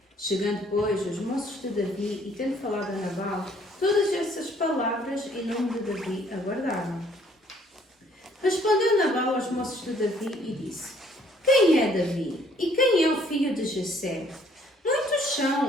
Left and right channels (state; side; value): normal; both; correlation 0.61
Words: Chegando, pois, os moços de Davi e tendo falado a Nabal, todas essas palavras em nome de Davi aguardaram. Respondeu Nabal aos moços de Davi e disse: Quem é Davi? E quem é o filho de Jessé? Muitos